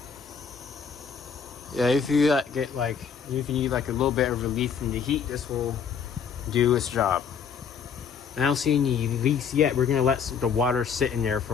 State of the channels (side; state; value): right; quieter; 6.7 dB